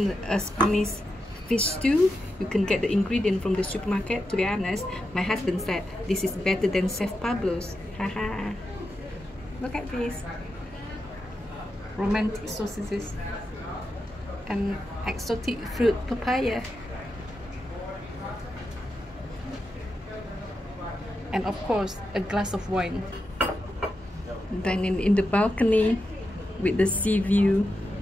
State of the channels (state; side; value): normal; both; correlation 0.87